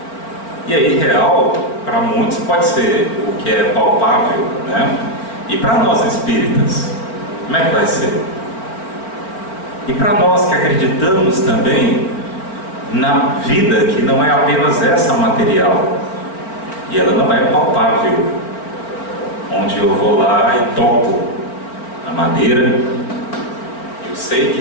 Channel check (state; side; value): late; right; 4.4 ms